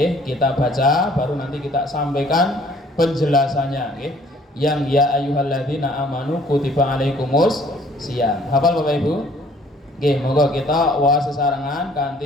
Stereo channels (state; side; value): normal; both; correlation 0.58